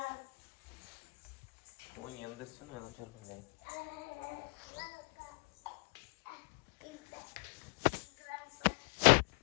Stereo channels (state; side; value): quieter; right; 30.7 dB